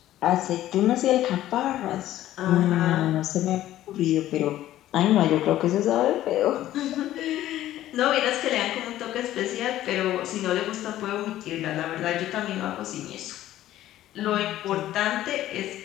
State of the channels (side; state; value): right; quieter; 13.7 dB